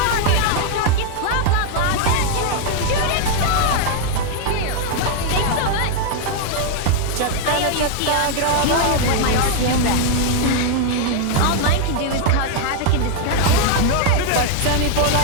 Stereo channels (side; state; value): both; different; correlation 0.00